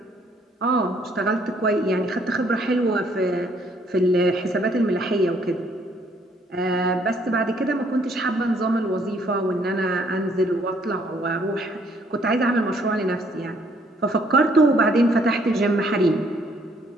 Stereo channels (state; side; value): normal; both; correlation 0.65